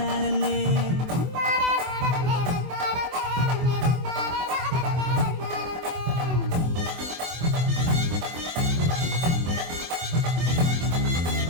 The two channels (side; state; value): left; late; 24 ms